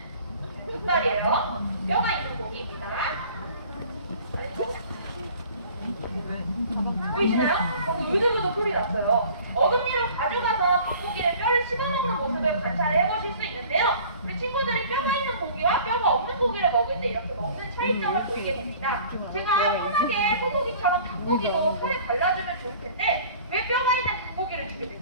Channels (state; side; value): inverted; both; correlation -0.48